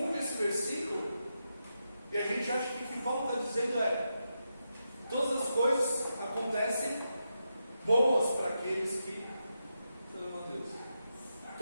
esse versículo e a gente acha que o que Paulo está dizendo é: todas as coisas acontecem boas para aqueles que amam a Deus.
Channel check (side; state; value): both; inverted; correlation -0.86